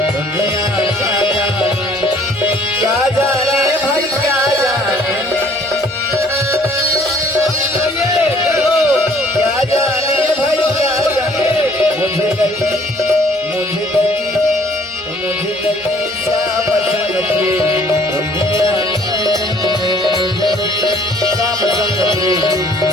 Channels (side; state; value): both; normal; correlation 0.59